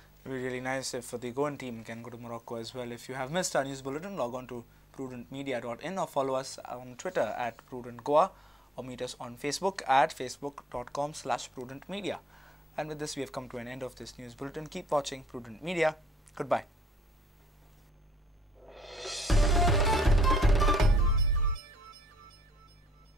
It would be really nice if the Goan team can go to Morocco as well. If you have missed our news bulletin, log on to prudentmedia.in or follow us on Twitter at PrudentGoa, or meet us on Facebook at facebook.com/prudentmedia. And with this, we have come to an end of this news bulletin. Keep watching Prudent Media. Goodbye.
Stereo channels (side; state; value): both; normal; correlation 0.64